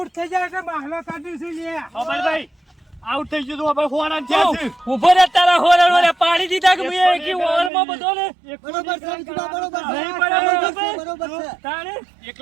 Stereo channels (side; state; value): left; drops out; at 7.7 s